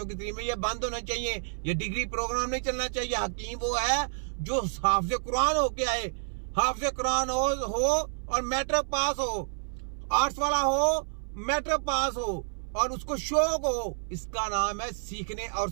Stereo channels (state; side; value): silent; left; 58 dB below the other